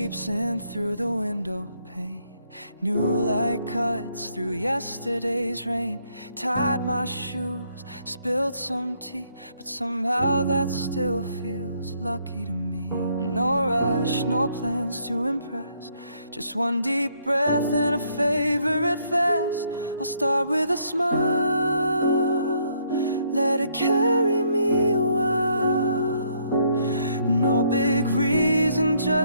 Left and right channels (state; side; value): inverted; both; correlation -0.70